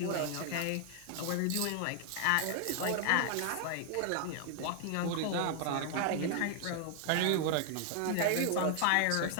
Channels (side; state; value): both; different; correlation 0.00